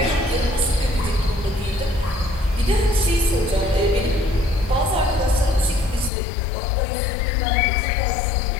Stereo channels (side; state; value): right; drops out; at 6.1 s